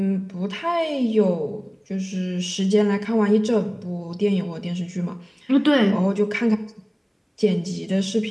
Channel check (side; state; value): both; identical; correlation 1.00